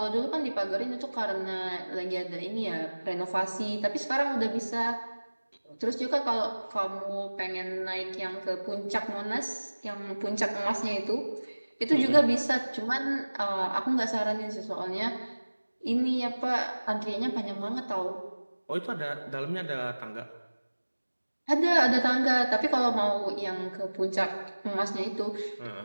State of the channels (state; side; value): inverted; both; correlation -1.00